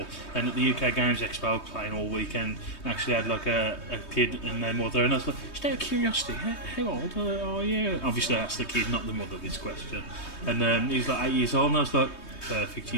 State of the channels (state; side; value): late; right; 3.2 ms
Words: And at the UK Games Expo, playing all weekend, actually had like a kid and their mother, and I was like, just out of curiosity, how old are you? Obviously, I asked the kid, not the mother, this question. And he was like 8 years old, and I was like, perfect,